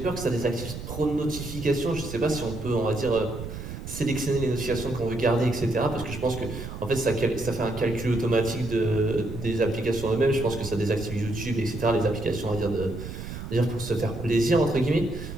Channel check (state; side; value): noise; right; rumble, 9 dB below the sound